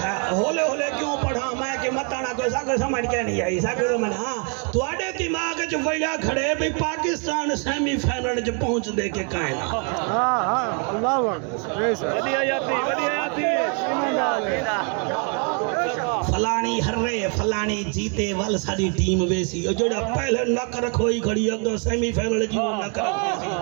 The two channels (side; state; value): left; quieter; 38.4 dB